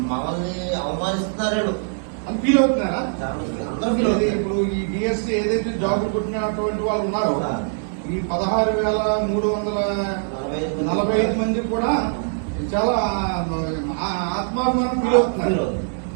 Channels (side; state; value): left; silent; digital silence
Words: మమ్మల్ని అవమానిస్తున్నారు అని ఫీల్ అవుతున్నారా? అందరూ ఫీల్ అవుతారు. ఇప్పుడు ఈ డిఎస్సీ ఏదైతే జాబులు కొట్టినటువంటి వాళ్ళు ఉన్నారో ఈ 16,345 మంది కూడా చాలా ఆత్మాభిమానం